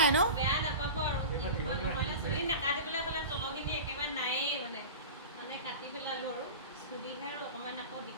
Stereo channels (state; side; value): inverted; both; correlation -0.31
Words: ন বেয়া নাপাব আৰু চুলি নাকাটিবলৈ হ'লে তলখিনি একেবাৰে নায়েই মানে কাটি পেলালোঁ আৰু সুবিধাৰ অকণমান আকৌ